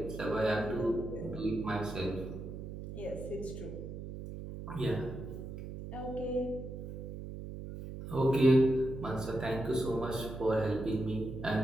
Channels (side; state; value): right; noise; hum, 8 dB below the sound